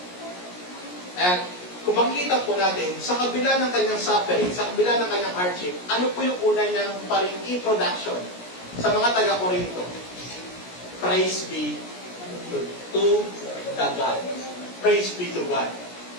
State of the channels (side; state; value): right; late; 17 ms